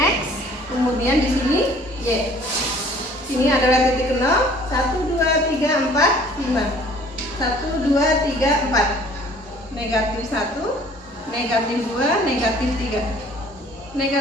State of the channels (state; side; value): normal; both; correlation 0.54